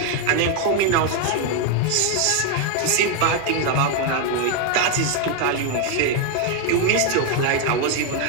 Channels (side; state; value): both; different; correlation 0.01